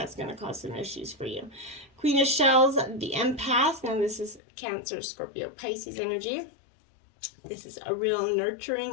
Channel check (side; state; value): right; drops out; at 4.4 s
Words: going to cause some issues for you. Queen of Shells, the Empath. Now this is Cancer, Scorpio, Pisces energy. This is a real